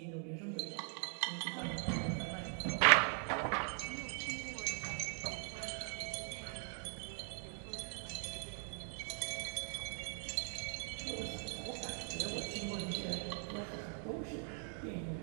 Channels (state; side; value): silent; left; 50 dB below the other